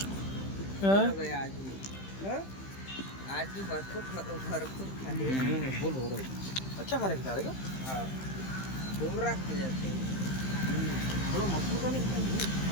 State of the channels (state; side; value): late; right; 15 ms